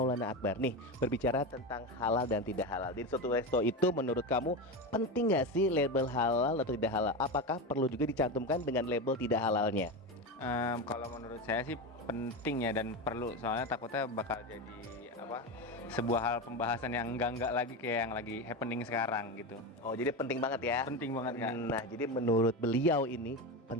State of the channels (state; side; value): normal; both; correlation 0.19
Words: Akbar. Nih, berbicara tentang halal dan tidak halal. Di suatu resto itu menurut kamu penting nggak sih label halal atau tidak halal? Apakah perlu juga dicantumkan dengan label tidak halalnya? Kalau menurut saya sih penting ya dan perlu, soalnya takutnya bakal jadi sebuah hal pembahasan yang enggak lagi kayak yang lagi happening sekarang gitu. Oh, jadi penting banget ya? Penting banget, Kak. Nah, jadi menurut beliau ini